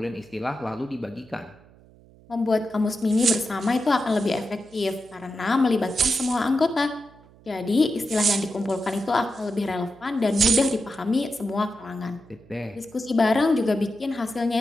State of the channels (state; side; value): noise; right; hum, 26 dB below the sound